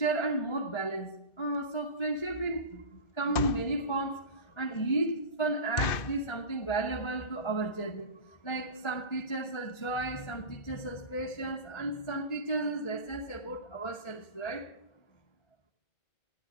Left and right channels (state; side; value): late; right; 1.4 ms